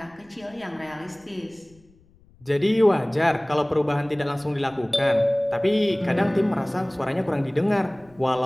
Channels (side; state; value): left; noise; rumble, 29 dB below the sound